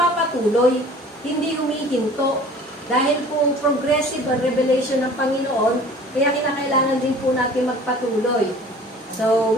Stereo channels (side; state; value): both; normal; correlation 0.47